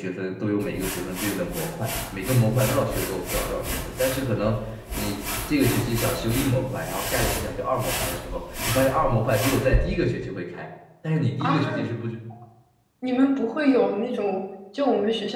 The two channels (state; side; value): identical; both; correlation 1.00